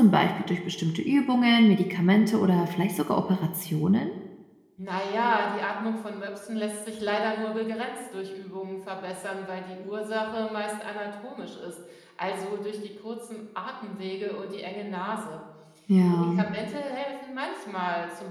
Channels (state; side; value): identical; both; correlation 1.00